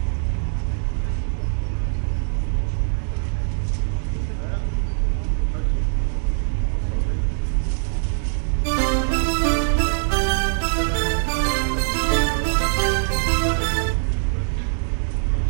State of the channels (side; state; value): left; silent; digital silence